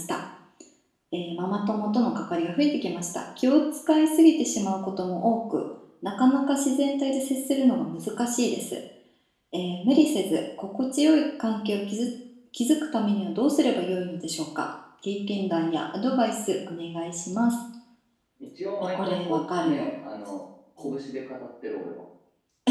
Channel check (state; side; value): identical; both; correlation 1.00